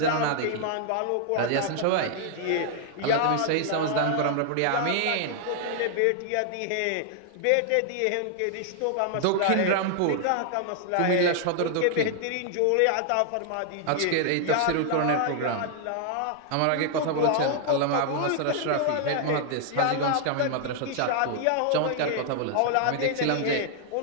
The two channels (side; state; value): both; different; correlation 0.00